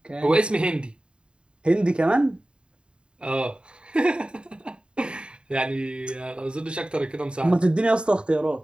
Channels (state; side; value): late; left; 0.052 ms